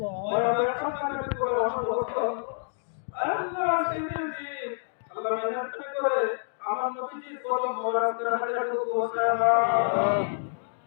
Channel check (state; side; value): silent; right; digital silence